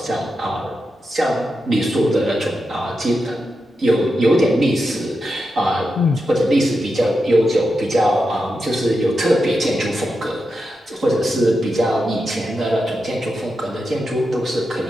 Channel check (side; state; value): both; normal; correlation 0.88